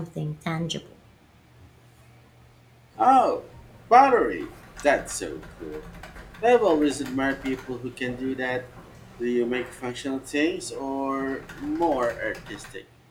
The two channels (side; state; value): both; identical; correlation 1.00